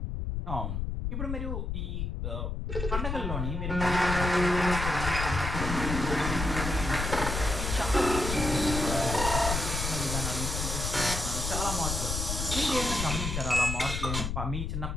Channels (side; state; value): left; noise; rumble, 3 dB below the sound